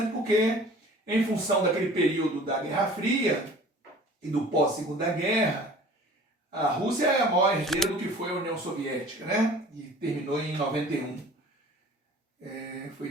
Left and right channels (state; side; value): normal; both; correlation 0.46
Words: porque, em função daquele período da Guerra Fria e do pós-Segunda Guerra, a Rússia é a maior herdeira do que foi a União Soviética, né? E terminou em 91. Foi